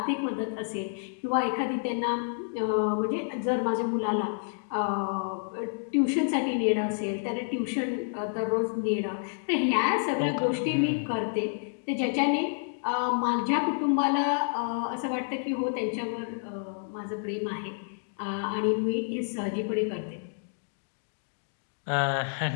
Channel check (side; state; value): right; silent; digital silence